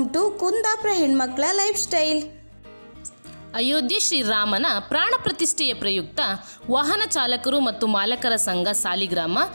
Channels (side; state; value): both; inverted; correlation -1.00